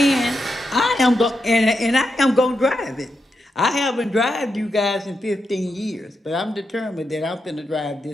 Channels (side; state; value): both; normal; correlation 0.85